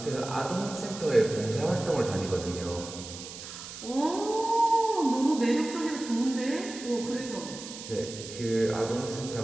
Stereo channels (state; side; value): noise; right; hiss, 12 dB below the sound